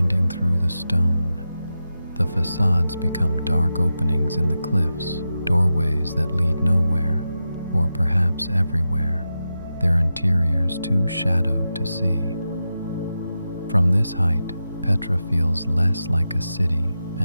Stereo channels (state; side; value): inverted; both; correlation -0.90